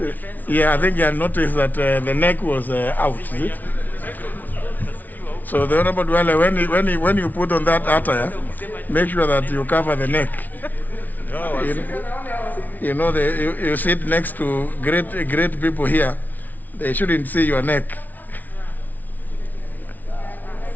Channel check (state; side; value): late; right; 0.080 ms